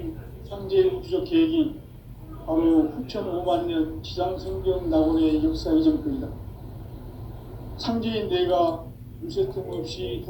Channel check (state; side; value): identical; both; correlation 1.00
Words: 상제의 우주적 계획이 바로 후천 5만 년 지상성경 낙원의 역사 이전부이다. 상제인 내가 유세틈 없이